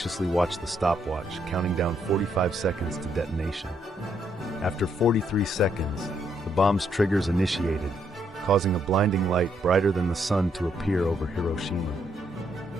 watched the stopwatch, counting down 45 seconds to detonation. After 43 seconds, the bomb's triggers initiated, causing a blinding light brighter than the sun to appear over Hiroshima.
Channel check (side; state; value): both; normal; correlation 0.74